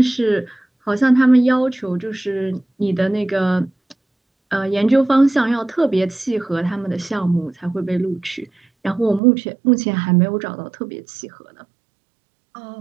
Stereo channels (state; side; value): drops out; left; at 9.2 s